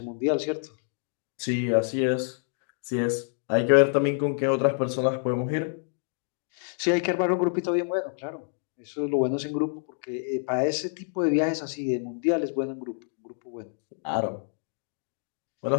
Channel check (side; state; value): right; silent; digital silence